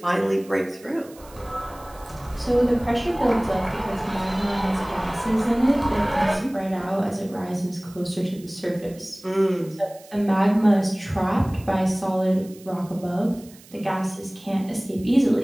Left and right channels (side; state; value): right; noise; hiss, 23 dB below the sound